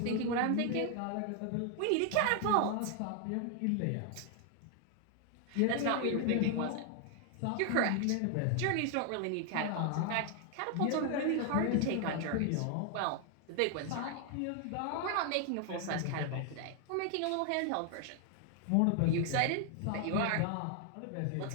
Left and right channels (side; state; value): both; different; correlation 0.00